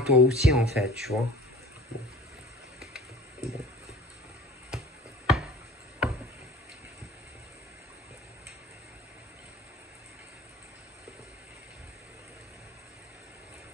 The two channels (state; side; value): normal; both; correlation 0.44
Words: aussi, en fait, tu vois. Bon. Bon.